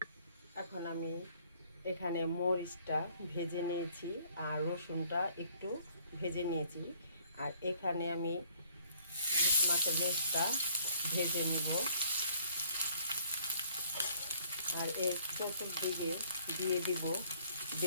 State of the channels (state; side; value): inverted; both; correlation -0.60